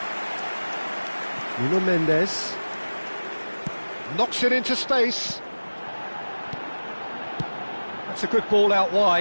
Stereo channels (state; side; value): inverted; both; correlation -1.00